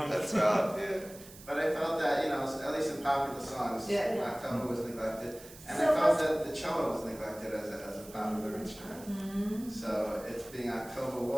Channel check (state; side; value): noise; right; hiss, 18 dB below the sound